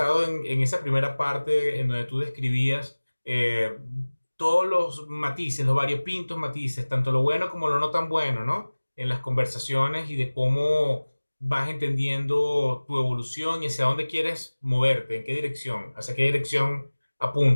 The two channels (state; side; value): inverted; both; correlation -1.00